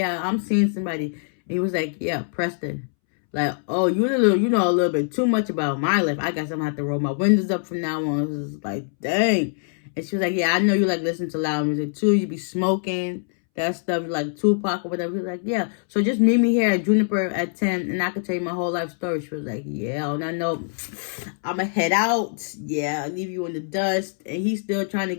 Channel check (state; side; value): silent; right; 63 dB below the other